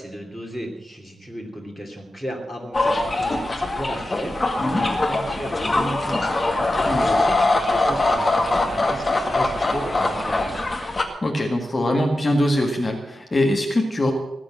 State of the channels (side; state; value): both; normal; correlation 0.92